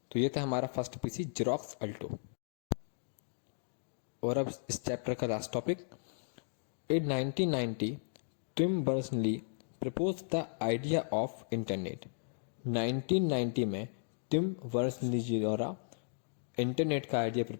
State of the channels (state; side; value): silent; right; digital silence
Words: तो ये था हमारा फर्स्ट पीसी Xerox Alto। और अब इस चैप्टर का last topic. In 1990, Tim Berners-Lee proposed the idea of Internet। 1990 में टिम बर्नर्स-ली जी द्वारा इंटरनेट का आइडिया